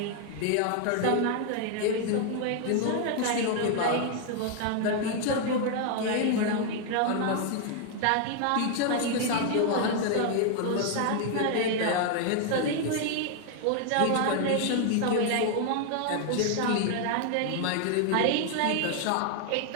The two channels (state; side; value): different; both; correlation 0.00